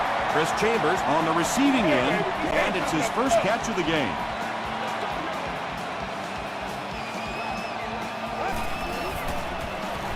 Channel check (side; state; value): both; identical; correlation 1.00